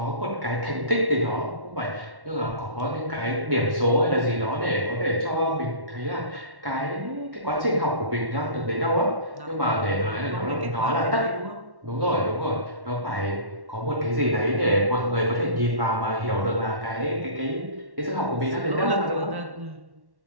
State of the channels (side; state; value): left; late; 1.1 ms